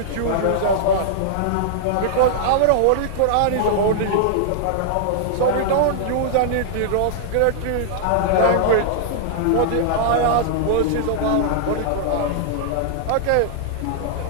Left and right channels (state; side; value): different; both; correlation -0.01